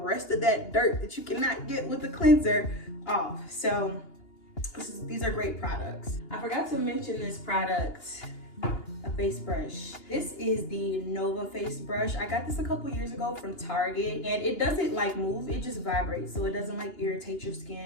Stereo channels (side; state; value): right; late; 2.8 ms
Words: of that dirt that you cannot get with the cleanser off. So these are great products. I forgot to mention this product, a face brush. This is the Nova face brush. I got this a couple years ago from Target, and it doesn't like move, it just vibrates, so it doesn't like irritate your